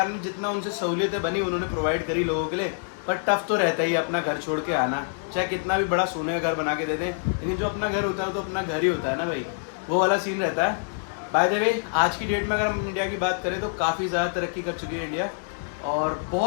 ने जितना उनसे सहूलियतें बनी उन्होंने प्रोवाइड करी लोगों के लिए। पर टफ तो रहता ही अपना घर छोड़ के आना, चाहे कितना भी बड़ा सोने का घर बना के दे दें, लेकिन जो अपना घर होता है तो अपना घर ही होता है ना भाई, वो वाला सीन रहता है। बाय द वे आज की डेट में अगर हम इंडिया की बात करें तो काफ़ी ज़्यादा तरक्की कर चुकी है इंडिया, और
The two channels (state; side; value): silent; right; 61 dB below the other